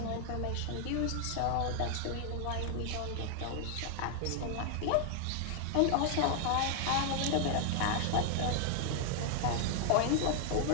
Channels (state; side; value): different; both; correlation 0.00